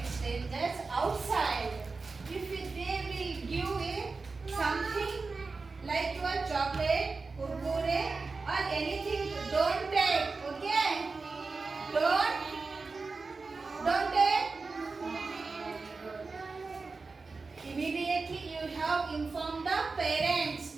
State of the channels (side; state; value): left; quieter; 4.1 dB